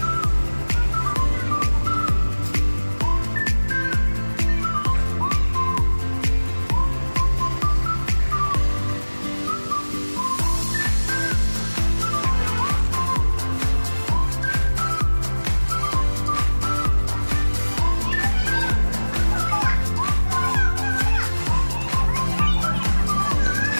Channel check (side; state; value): both; inverted; correlation -1.00